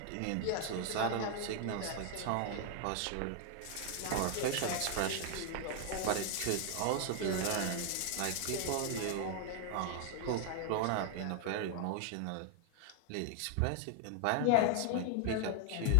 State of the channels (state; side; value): different; both; correlation 0.00